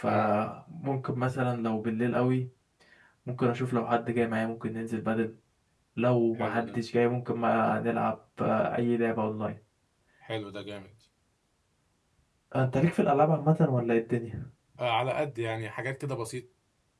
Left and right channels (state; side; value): identical; both; correlation 1.00